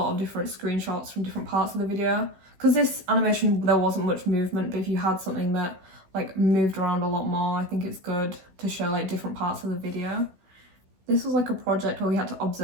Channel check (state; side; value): late; left; 16 ms